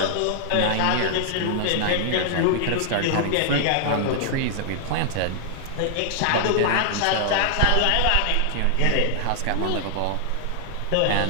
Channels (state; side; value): different; both; correlation -0.01